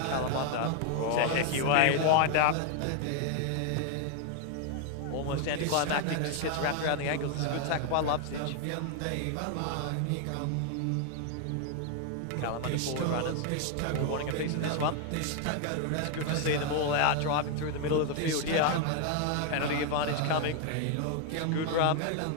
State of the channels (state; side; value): different; both; correlation 0.00